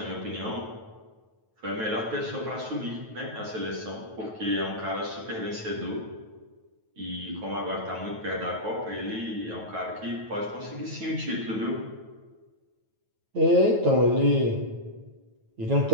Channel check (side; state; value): left; late; 9.2 ms